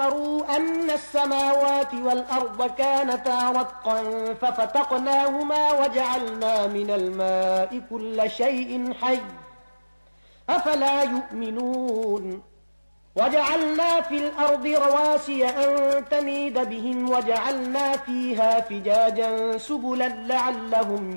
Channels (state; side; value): inverted; both; correlation -1.00